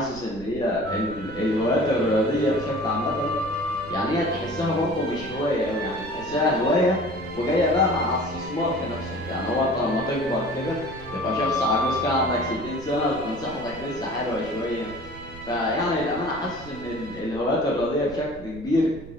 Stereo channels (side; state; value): right; noise; rumble, 16 dB below the sound